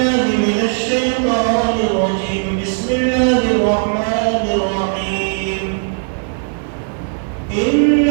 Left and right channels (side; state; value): left; silent; digital silence